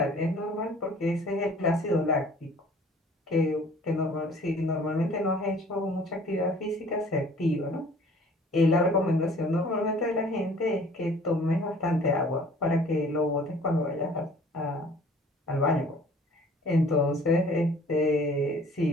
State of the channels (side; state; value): both; normal; correlation 0.52